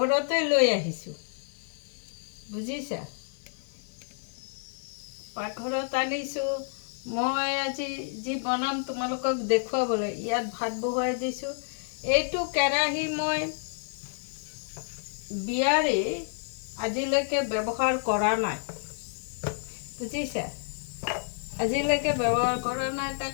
লৈ আহিছোঁ, বুজিছা। পাকঘৰত আনিছোঁ মই আজি যি বনাম তোমালোকক দেখুৱাবলৈ। ইয়াত ভাত বহুৱাই দিছোঁ। এইটো কেৰাহী মই বিয়াৰে আজিলৈকে ব্যৱহাৰ কৰা নাই, বুজিছা। আজিলৈকে ব্যৱহাৰ কৰা নাই,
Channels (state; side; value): silent; right; digital silence